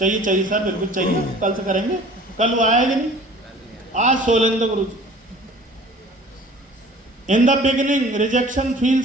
चाहिए सर, बिल्कुल चाहिए। कल से करेंगे। कल वो आएगा नहीं, आज Solendra Guru ji. In the beginning rejection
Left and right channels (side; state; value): both; normal; correlation 0.48